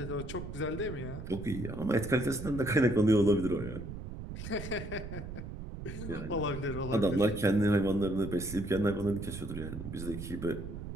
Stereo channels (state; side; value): noise; right; rumble, 9 dB below the sound